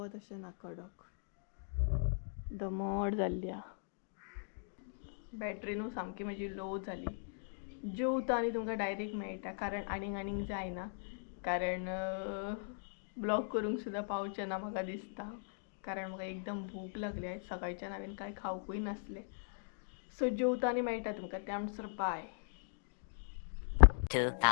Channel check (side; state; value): right; silent; digital silence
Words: अशें ना, कडक दमट जाल्ली आहा. बॅटरी न्हू सामकी म्हजी लो जाली. जेवता आनी तुमकां डायरेक्ट मेळटा, कारण आनीक जायना. कारण ब्लॉग करूंक सुद्दां पावचें ना म्हाका दिसता, कारण म्हाका एकदम भूक लागली. आयज सकाळच्यान हांवें कांय खावंकूय नासलें. सो जेवता आनी मेळटा तुमकां. त्या म्हणसर bye.